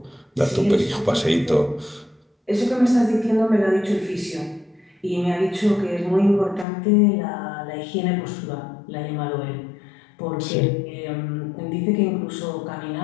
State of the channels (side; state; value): right; drops out; at 6.7 s